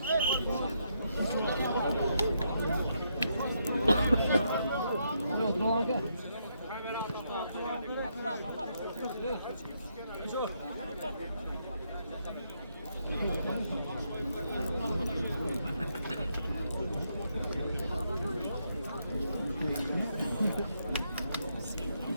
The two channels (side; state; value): both; inverted; correlation -0.77